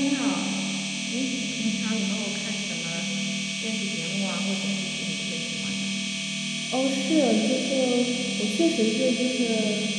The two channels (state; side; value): identical; both; correlation 1.00